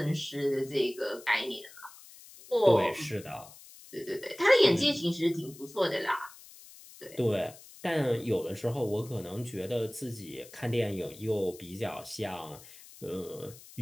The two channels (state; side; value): noise; left; hiss, 19 dB below the sound